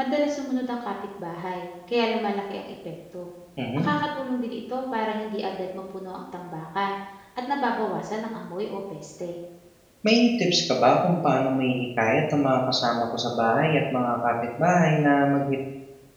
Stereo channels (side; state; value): both; identical; correlation 1.00